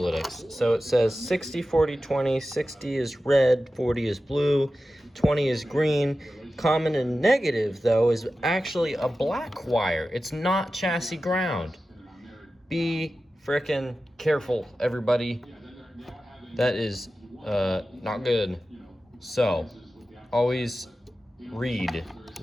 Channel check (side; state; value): both; normal; correlation 0.94